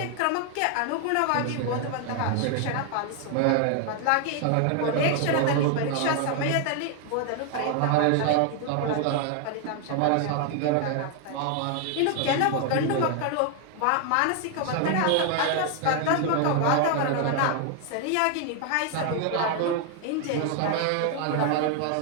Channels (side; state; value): both; different; correlation 0.00